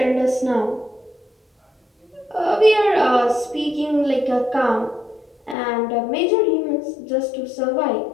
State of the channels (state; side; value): drops out; right; at 5.6 s